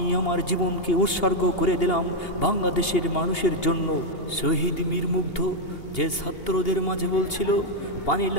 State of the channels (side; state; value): right; late; 2.8 ms